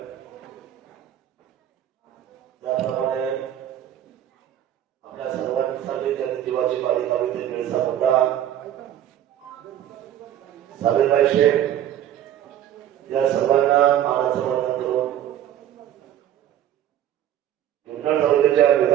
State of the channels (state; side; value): quieter; left; 11.3 dB